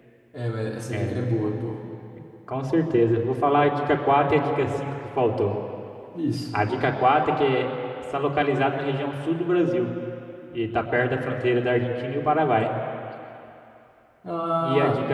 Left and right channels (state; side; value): identical; both; correlation 1.00